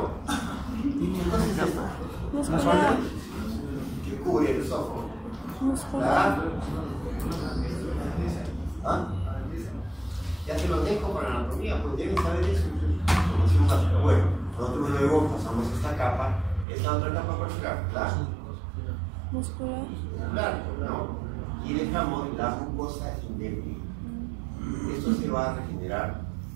¿Qué cosa es esto? Muscular. Que cubre el esófago. Muscular. ¿Ah? Ya se los dejo para la anatomía, pues deben saber eso, información básica. Bueno, nosotros luego pasamos esta capa, esta otra capa vascular, claro. Muscular. Claro, ¿no? Y dejamos la mucosa indemne. Esto se va a regenerar.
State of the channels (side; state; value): left; drops out; at 16.7 s